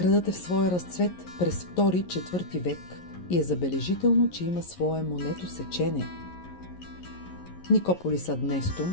е в своя разцвет през 2-4 век и е забележително, че има свое монетосечене. Никополис ад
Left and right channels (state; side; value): late; right; 11 ms